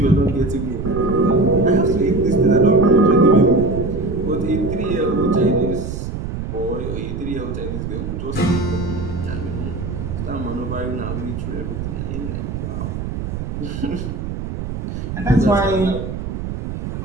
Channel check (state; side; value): noise; right; rumble, 5 dB below the sound